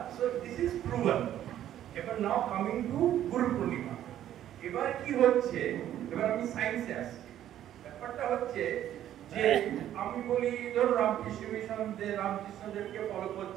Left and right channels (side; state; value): left; quieter; 11.6 dB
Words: So this is proven. Ever now coming to Guru Purnima. এবার কি হচ্ছে, এবার আমি সায়েন্সে আসছি। ব্যাপারটা হচ্ছে যে আমি বলি ধরো রামকৃষ্ণ মিশন যে রামকৃষ্ণদেবকে ফলো